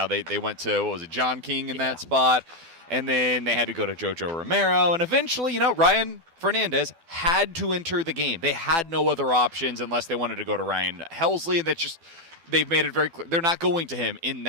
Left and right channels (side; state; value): left; late; 12 ms